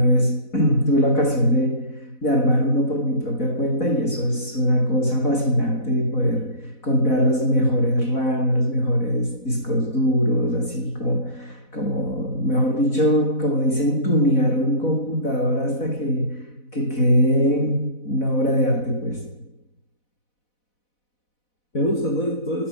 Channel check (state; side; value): late; right; 4.1 ms